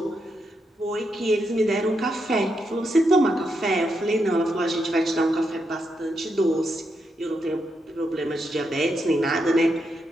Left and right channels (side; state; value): both; normal; correlation 0.82